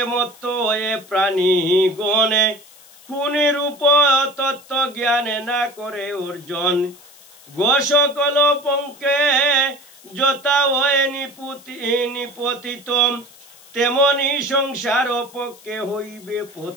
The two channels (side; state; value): left; noise; hiss, 23 dB below the sound